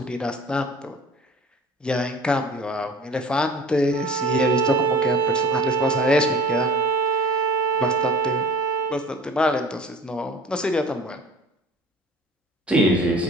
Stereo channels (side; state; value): both; normal; correlation 0.45